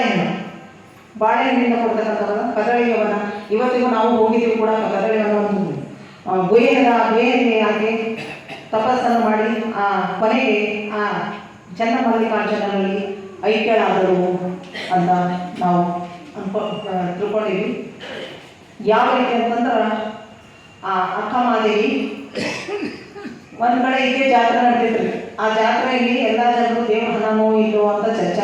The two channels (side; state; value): both; identical; correlation 1.00